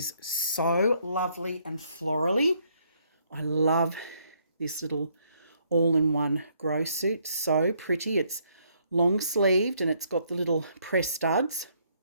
so lovely and florally. I love this little all-in-one grow suit. So pretty. It's long-sleeved and it's got the little press studs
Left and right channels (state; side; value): inverted; both; correlation -0.69